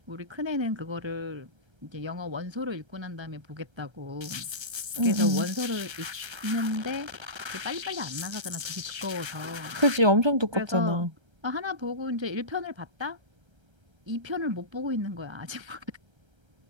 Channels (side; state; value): left; late; 1.3 ms